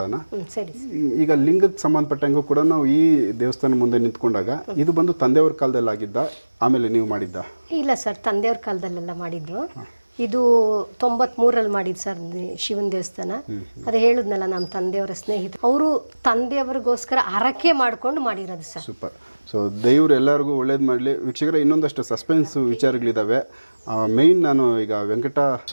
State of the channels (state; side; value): inverted; both; correlation -1.00